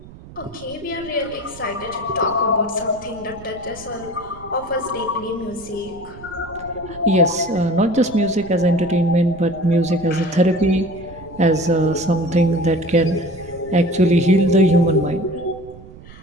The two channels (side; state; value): right; noise; rumble, 18 dB below the sound